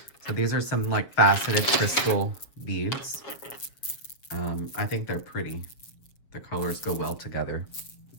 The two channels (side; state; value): right; late; 7.4 ms